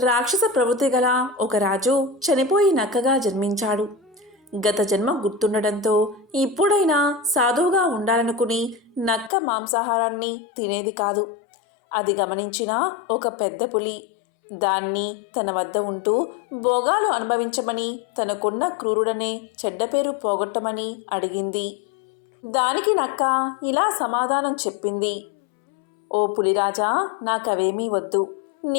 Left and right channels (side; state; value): right; drops out; at 9.3 s